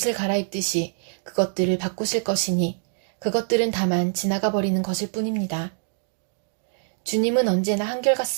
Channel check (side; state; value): left; silent; digital silence